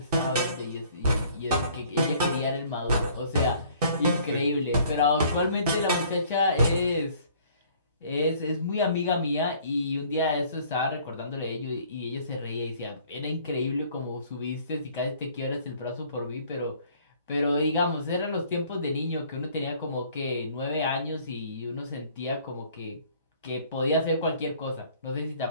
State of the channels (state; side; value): inverted; both; correlation -0.56